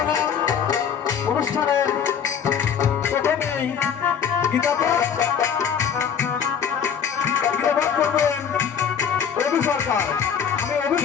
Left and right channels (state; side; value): quieter; right; 7.7 dB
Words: না। অনুষ্ঠানের প্রথমেই গীতাপাঠ করবেন রবি সরকার। আমি রবি